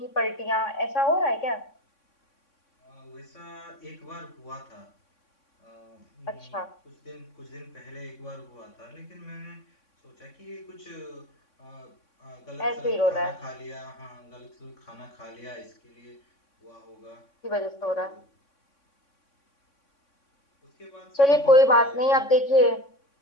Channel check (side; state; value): right; late; 3.6 ms